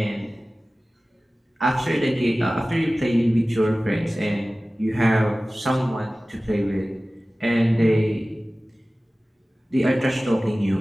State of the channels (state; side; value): normal; both; correlation 0.97